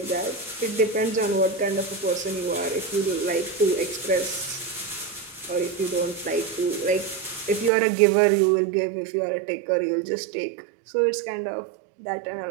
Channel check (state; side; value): drops out; left; at 7.7 s